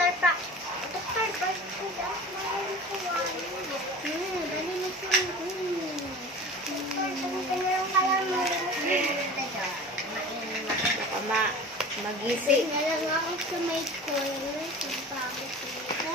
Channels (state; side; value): normal; both; correlation 0.38